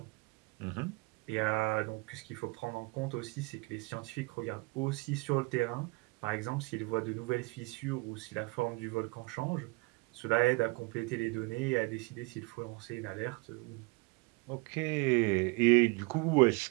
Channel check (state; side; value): quieter; left; 26.8 dB